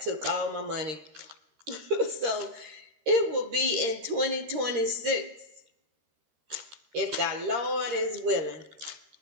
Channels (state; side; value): late; left; 13 ms